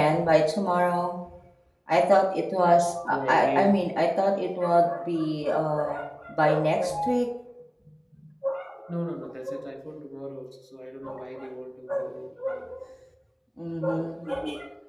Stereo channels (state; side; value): identical; both; correlation 1.00